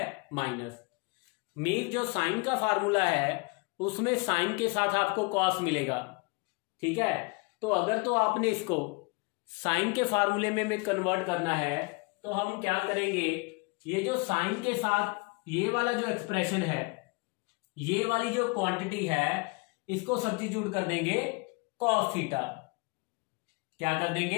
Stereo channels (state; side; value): quieter; right; 29.2 dB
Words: माइनस। मीन जो साइन का फार्मूला है उसमें साइन के साथ आपको कॉस मिलेगा, ठीक है। तो अगर तो आपने इसको साइन के फार्मूले में कन्वर्ट करना है तो हम क्या करेंगे, ये जो साइन के साथ ये वाला जो एक्सप्रेशन है, ये वाली जो क्वांटिटी है इसको सब्स्टिट्यूट कर देंगे कॉस थीटा। क्या कर